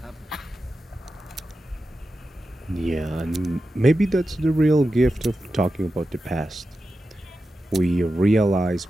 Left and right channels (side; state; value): both; normal; correlation 0.91